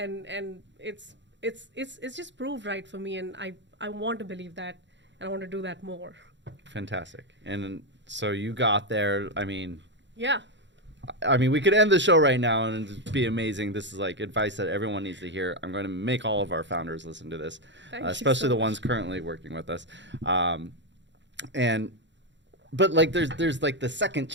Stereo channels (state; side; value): late; left; 0.53 ms